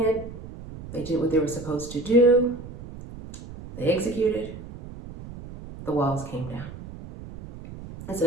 They did what they were supposed to do. They executed. The walls came down. It's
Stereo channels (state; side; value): noise; right; rumble, 13 dB below the sound